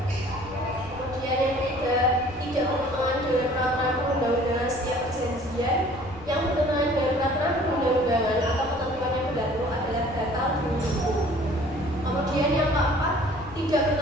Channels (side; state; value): left; noise; rumble, 18 dB below the sound